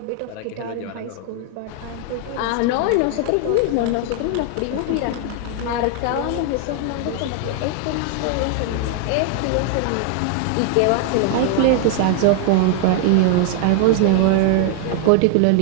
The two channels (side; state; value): both; different; correlation 0.00